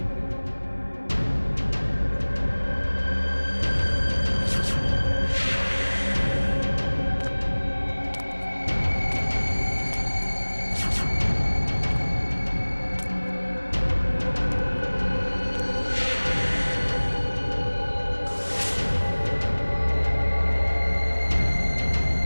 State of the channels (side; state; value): both; inverted; correlation -1.00